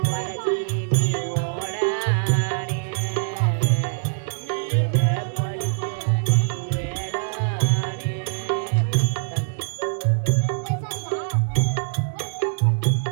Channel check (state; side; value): silent; left; digital silence